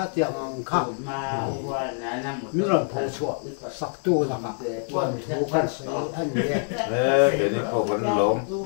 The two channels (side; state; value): right; silent; 56 dB below the other